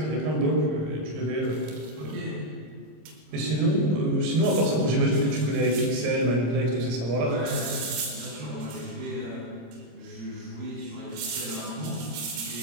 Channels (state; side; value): late; left; 26 ms